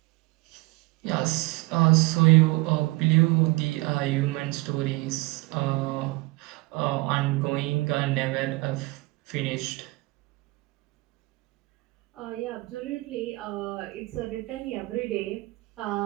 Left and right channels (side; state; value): left; quieter; 22.1 dB